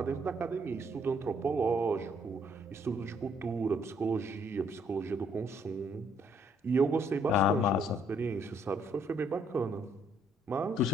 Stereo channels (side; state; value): both; normal; correlation 0.67